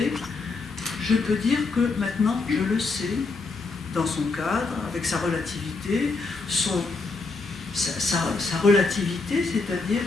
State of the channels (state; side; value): quieter; right; 3.9 dB